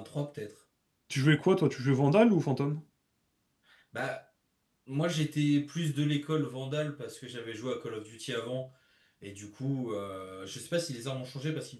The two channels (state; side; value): identical; both; correlation 1.00